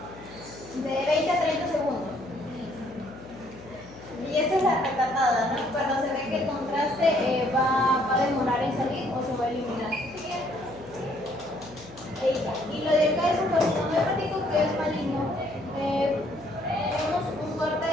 de 20 a 30 segundos. Y esta es la retratada, ¿no? Cuando se ve que el contraste va a demorar en salir o se va a eliminar. Y lo de acá es un carcinoma hepático que es maligno. Tenemos un corte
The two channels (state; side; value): noise; left; hum, 20 dB below the sound